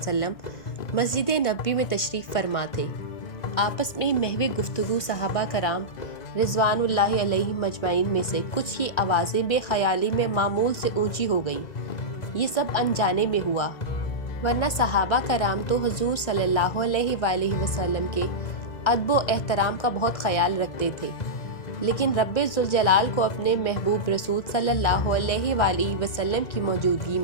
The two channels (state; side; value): late; right; 1.6 ms